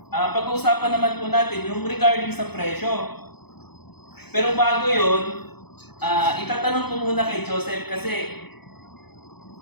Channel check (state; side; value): late; right; 0.97 ms